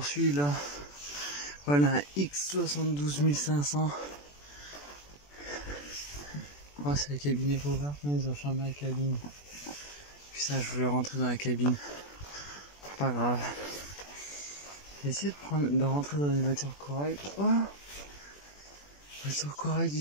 là. Voilà un X72500. Oh, c'est la cabine est ouverte, mais ils ont fermé la cabine. Putain, je voulais rentrer dans la cabine. Pas grave. J'ai essayé de rentrer dans une voiture Corail. Oh, voiture Corail du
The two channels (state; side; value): late; right; 21 ms